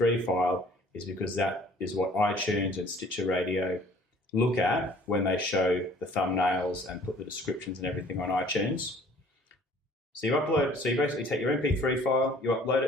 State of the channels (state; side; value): normal; both; correlation 0.54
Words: file is because that is what iTunes and Stitcher Radio look at when they show the thumbnails and put the descriptions and everything on iTunes. So you basically take your MP3 file, you upload